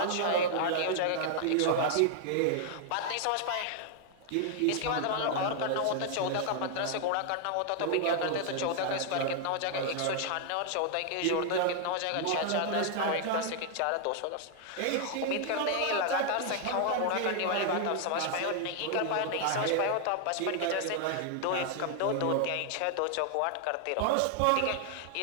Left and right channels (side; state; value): both; different; correlation 0.00